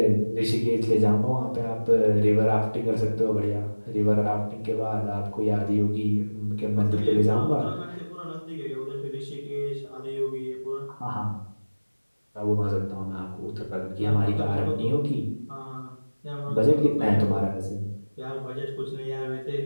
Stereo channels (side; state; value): both; inverted; correlation -1.00